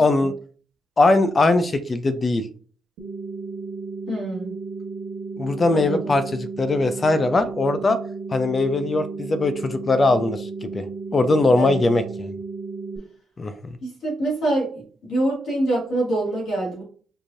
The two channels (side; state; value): both; normal; correlation 0.84